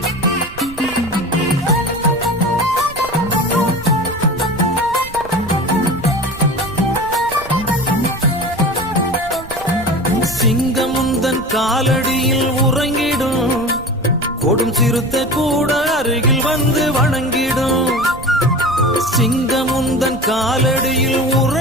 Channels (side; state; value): right; noise; rumble, 16 dB below the sound